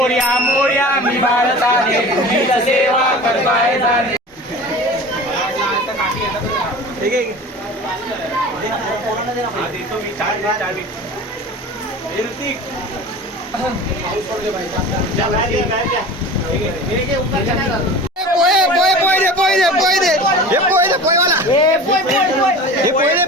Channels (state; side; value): normal; both; correlation 0.37